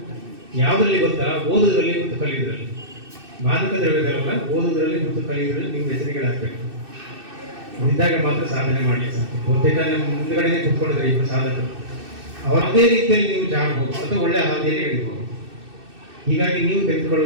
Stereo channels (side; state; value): left; late; 2.6 ms